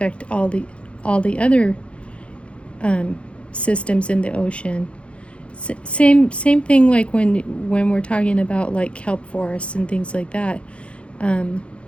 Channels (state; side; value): late; right; 0.060 ms